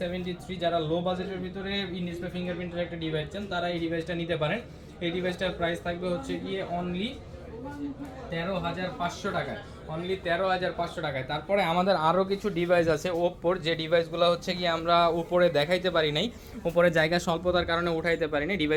যারা লো বাজেটের ভিতরে ইন ডিসপ্লে ফিঙ্গারপ্রিন্টের একটা ডিভাইস চান তারা এই ডিভাইসটা নিতে পারেন। এই ডিভাইসটার প্রাইস থাকবে হচ্ছে গিয়ে অনলি 13500 টাকায়, অনলি 13500 টাকায়। তারপরে আমাদের আরও কিছু ডিভাইস আছে ওপ্পোর, যে ডিভাইসগুলো হচ্ছে কি আমরা উপরে দেখাইতে পারি নাই, উপরে জায়গা স্বল্পতার কারণে উঠাইতে পারি নাই।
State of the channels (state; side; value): identical; both; correlation 1.00